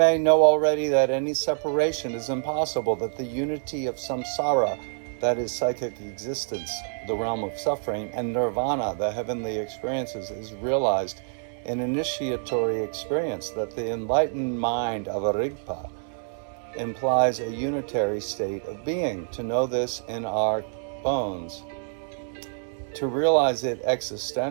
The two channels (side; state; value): left; silent; 60 dB below the other